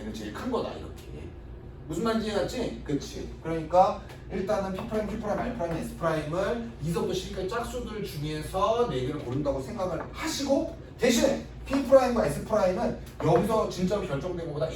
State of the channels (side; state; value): both; identical; correlation 1.00